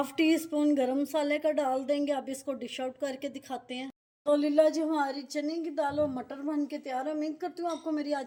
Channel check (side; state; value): both; identical; correlation 1.00